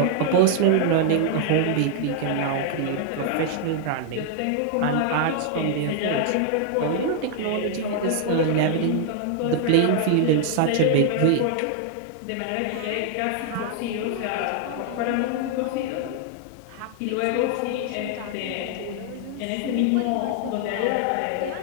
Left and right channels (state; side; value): different; both; correlation 0.00